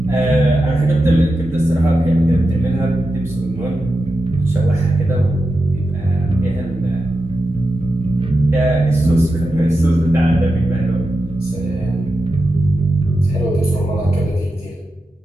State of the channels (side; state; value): both; normal; correlation 0.90